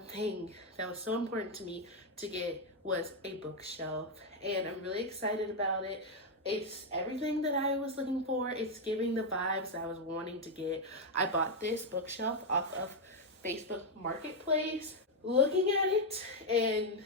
that was so important to me to get was a bookshelf, and I'm really excited about it. It's everything that I was looking for. It's giving the vibes I was wanting to get. I bought this bookshelf off of Facebook Marketplace. Looking at it and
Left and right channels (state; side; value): normal; both; correlation 0.01